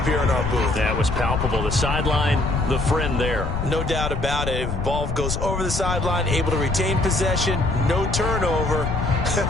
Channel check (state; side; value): noise; left; rumble, 3 dB below the sound